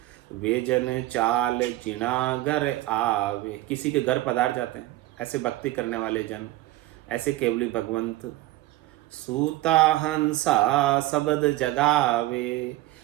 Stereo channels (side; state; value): left; quieter; 16.9 dB